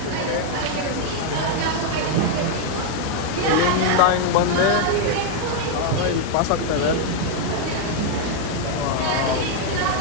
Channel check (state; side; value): different; both; correlation 0.00